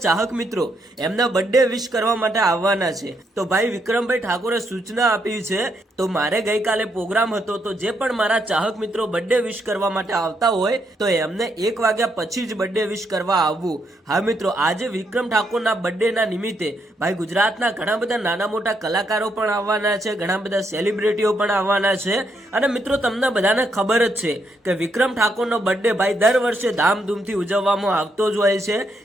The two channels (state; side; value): normal; both; correlation 0.77